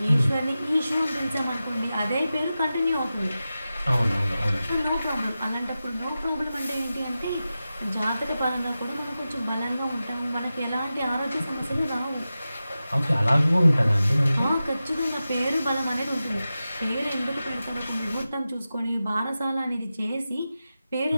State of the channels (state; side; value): inverted; both; correlation -0.93